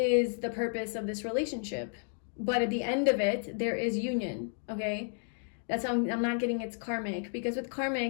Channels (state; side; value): silent; right; 56 dB below the other